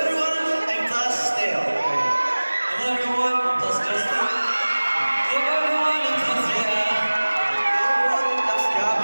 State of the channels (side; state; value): both; inverted; correlation -1.00